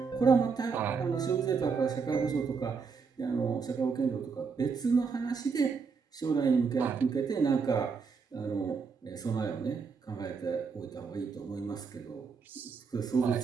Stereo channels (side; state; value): left; quieter; 5.3 dB